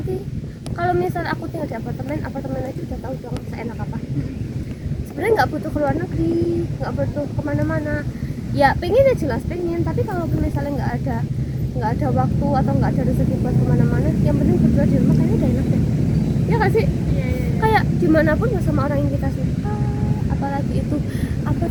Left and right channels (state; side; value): identical; both; correlation 1.00